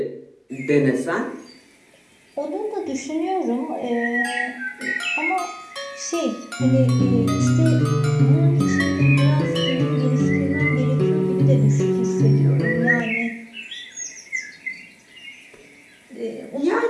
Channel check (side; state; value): both; identical; correlation 1.00